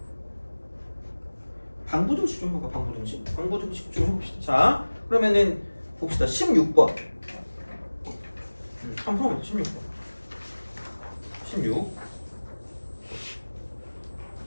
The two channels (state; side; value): inverted; both; correlation -1.00